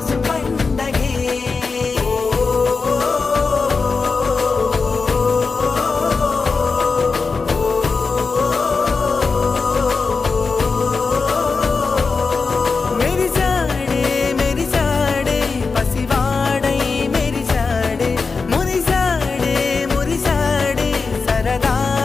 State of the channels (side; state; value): right; quieter; 4.6 dB